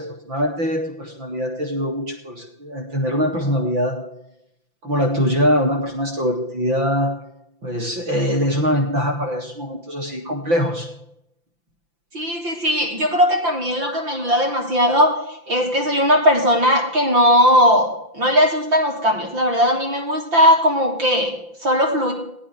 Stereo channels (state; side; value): late; left; 5.9 ms